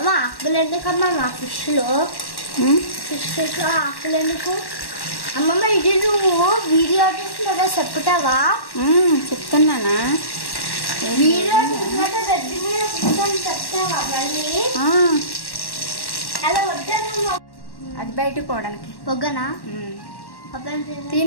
ఆకులు ఎందుకమ్మా మా ఫిష్లో ఆకులు ఎందుకు? అమ్మమ్మ ఇది నువ్వు వీడియో తీసినదా చెప్తావా? చెప్తున్నానా? వీడియో తీసినట్టు గడ్డి మీద కూర్చొని చెప్తావా మళ్ళీ? అలా వద్దా? అది బయటకు పోవడానికి పొగ్గనా?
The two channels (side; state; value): right; late; 1.1 ms